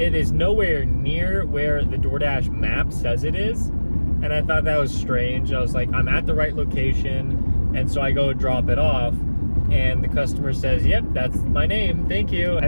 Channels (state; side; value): inverted; both; correlation -1.00